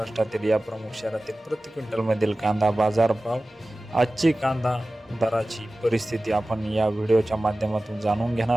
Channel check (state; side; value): normal; both; correlation 0.97